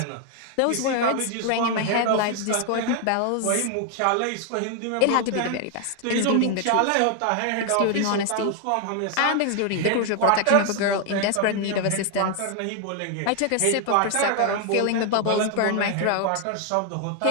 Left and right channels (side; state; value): both; different; correlation 0.00